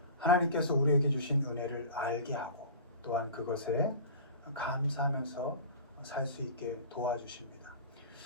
하나님께서 우리에게 주신 은혜를 알게 하고 또한 그것에 감사하면서 살 수 있게 도와주십니다.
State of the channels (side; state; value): both; inverted; correlation -0.37